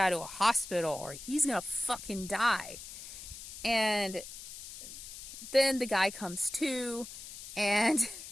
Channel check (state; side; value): noise; left; hiss, 12 dB below the sound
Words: to a hospital or he's gonna fucking die. And then the guy comes to, and